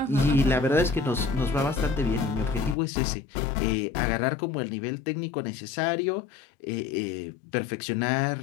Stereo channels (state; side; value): drops out; right; at 2.8 s